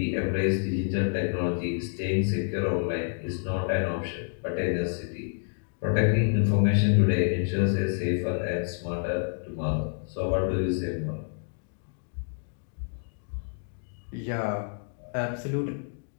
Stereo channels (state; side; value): silent; right; digital silence